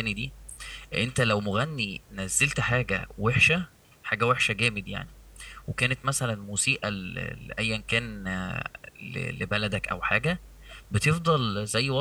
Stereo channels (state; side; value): identical; both; correlation 1.00